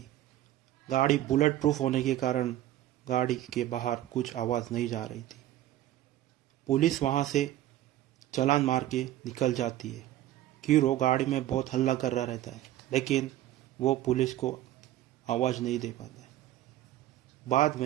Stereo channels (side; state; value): left; quieter; 13.7 dB